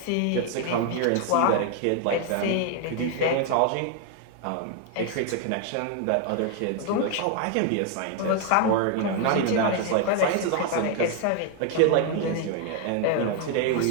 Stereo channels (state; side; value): different; both; correlation 0.00